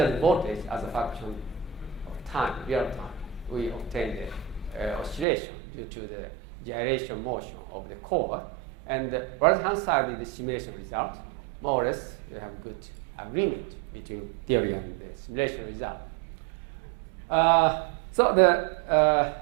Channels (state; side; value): drops out; left; at 5.2 s